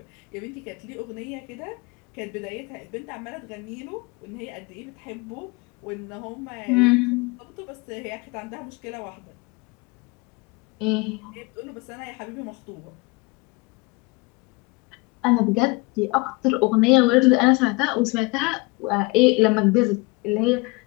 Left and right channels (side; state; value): right; quieter; 26.0 dB